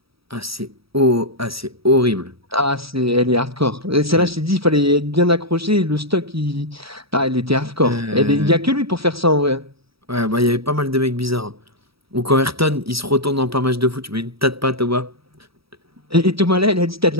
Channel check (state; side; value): late; left; 0.76 ms